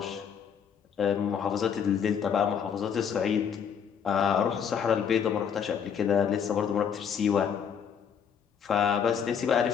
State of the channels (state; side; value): quieter; right; 7.5 dB